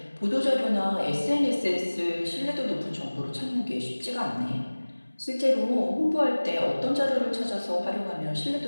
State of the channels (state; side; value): inverted; both; correlation -1.00